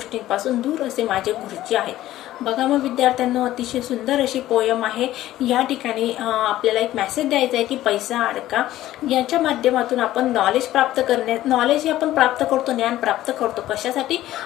दूर असे माझे गुरुजी आहेत. बघा मग विद्यार्थ्यांना अतिशय सुंदर अशी पोयम आहे. या ठिकाणी आपल्याला एक मेसेज द्यायचा आहे की पैसा अडका याच्या माध्यमातून आपण नॉलेज हे आपण प्राप्त करतो, ज्ञान प्राप्त करतो. कशासाठी?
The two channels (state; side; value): quieter; right; 14.4 dB